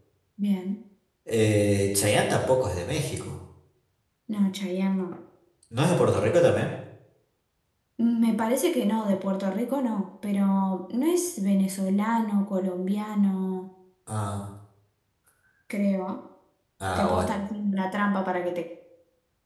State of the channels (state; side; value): identical; both; correlation 1.00